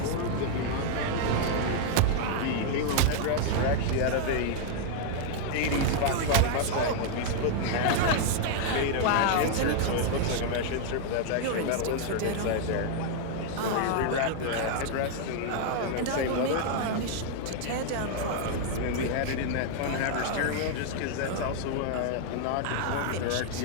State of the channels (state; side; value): different; both; correlation 0.00